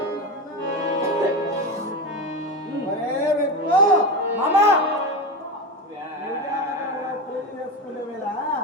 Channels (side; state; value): both; normal; correlation 0.20